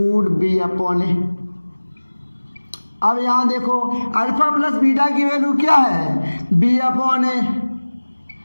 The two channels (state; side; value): inverted; both; correlation -1.00